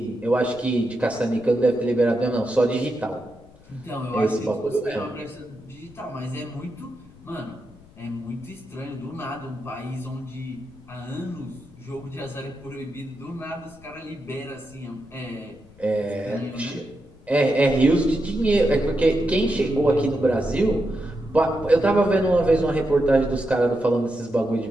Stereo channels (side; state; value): left; noise; rumble, 24 dB below the sound